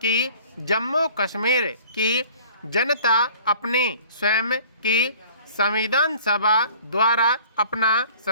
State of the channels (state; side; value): inverted; both; correlation -0.49